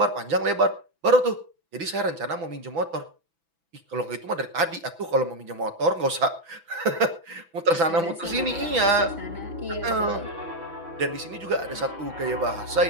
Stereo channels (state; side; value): late; left; 6.0 ms